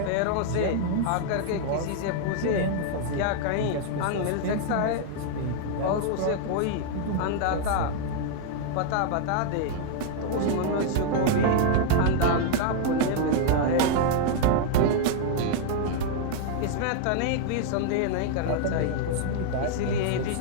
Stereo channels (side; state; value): both; different; correlation 0.00